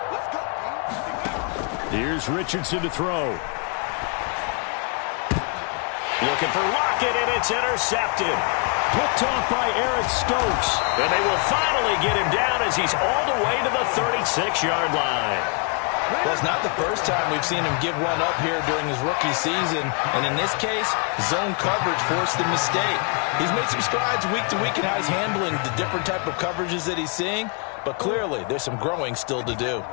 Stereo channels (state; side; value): quieter; right; 37.1 dB